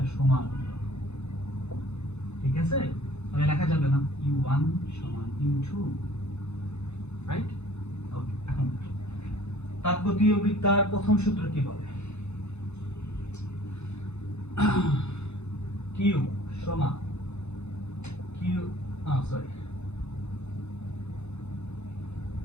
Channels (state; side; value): late; right; 0.81 ms